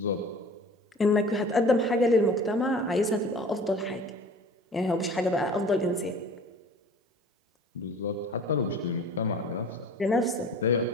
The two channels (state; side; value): normal; both; correlation 0.44